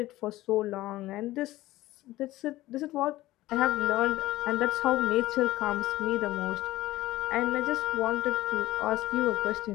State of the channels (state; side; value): quieter; right; 16.8 dB